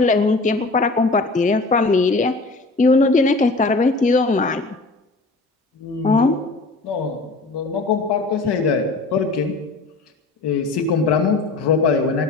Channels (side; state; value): right; quieter; 3.4 dB